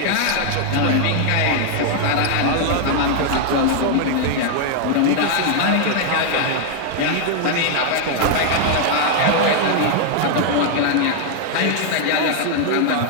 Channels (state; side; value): different; both; correlation 0.00